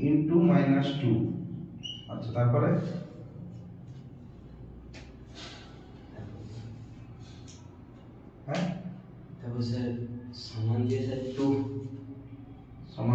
ইনটু -2। আচ্ছা, তারপরে হ্যাঁ, তারপর স্যার সমান দিয়ে স্যার 2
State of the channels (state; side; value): identical; both; correlation 1.00